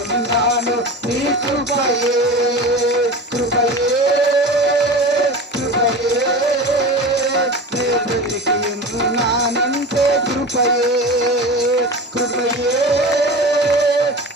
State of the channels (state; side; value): normal; both; correlation 0.31